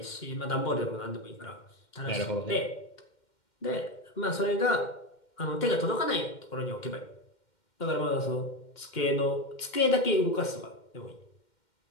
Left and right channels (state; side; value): late; right; 2.1 ms